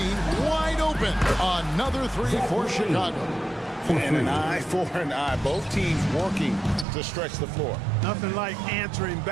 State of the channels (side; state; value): left; drops out; at 6.9 s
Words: wide open. Another 3 for Chicago. And an eye for an eye. Both teams working to stretch the floor. Nothing like answering